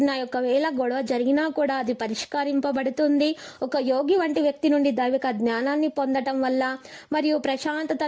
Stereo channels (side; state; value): both; identical; correlation 1.00